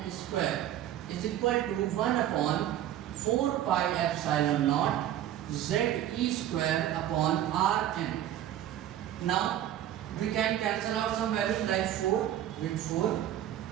square is equal to 1 upon 4 pi epsilon naught Ze square upon Rn. Now we can cancel out some values like 4 with 4,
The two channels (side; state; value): left; quieter; 11.9 dB